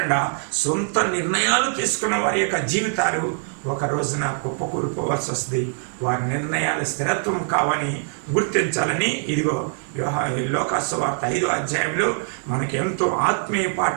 సొంత నిర్ణయాలు తీసుకున్న వారి యొక్క జీవితాలు ఒక రోజున కుప్పకూలిపోవాల్సి వస్తుంది. వారి నిర్ణయాలు స్థిరత్వం కావని గుర్తించాలని ఇదిగో లోకాసు సువార్త 5వ అధ్యాయంలో మనకి ఎంతో ఆత్మీయ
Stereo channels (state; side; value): silent; left; 63 dB below the other